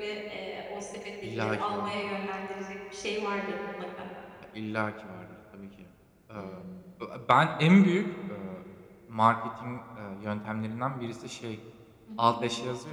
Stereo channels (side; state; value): both; identical; correlation 1.00